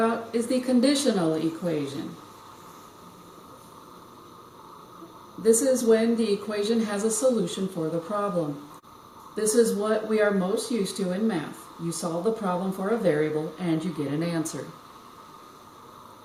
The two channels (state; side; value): identical; both; correlation 1.00